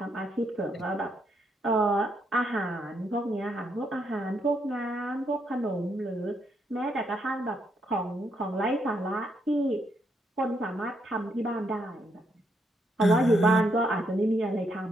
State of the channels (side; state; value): both; normal; correlation 0.76